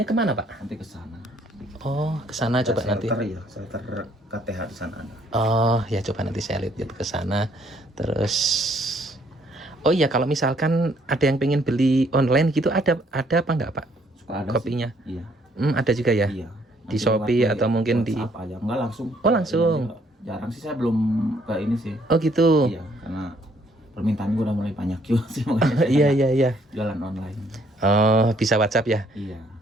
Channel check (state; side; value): normal; both; correlation 0.66